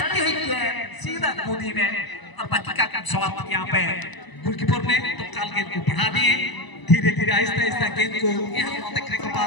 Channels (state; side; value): late; right; 1.0 ms